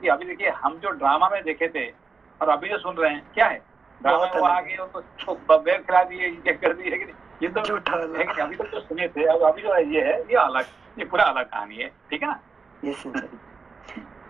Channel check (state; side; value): quieter; left; 4.8 dB